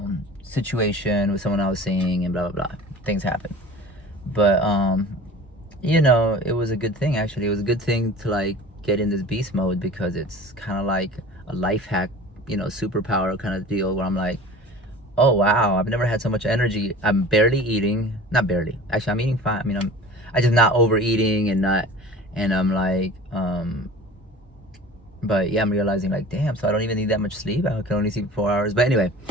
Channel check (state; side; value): normal; both; correlation 0.41